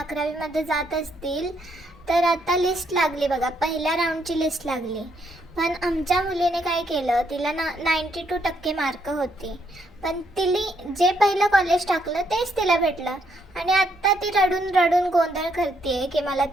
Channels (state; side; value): normal; both; correlation 0.74